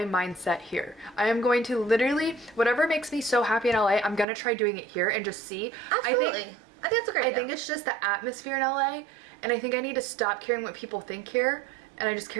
mindset here. I am going to literally, whatever makes me so happy in LA, I'm going to try doing it here and just see. Absolutely. I think that's a great idea. I think it's just the atmosphere in LA, and I think I need to stop caring what people think here, and I just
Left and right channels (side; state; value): left; drops out; at 4.2 s